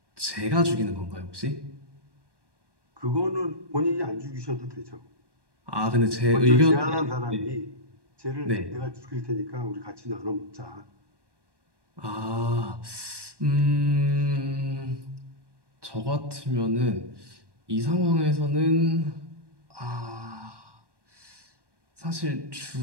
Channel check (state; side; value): late; left; 1.1 ms